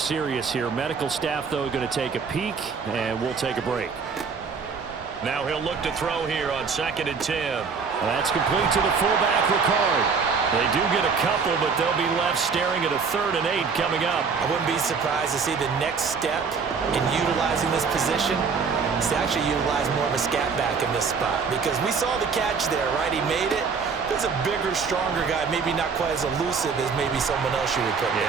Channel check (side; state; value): left; quieter; 5.5 dB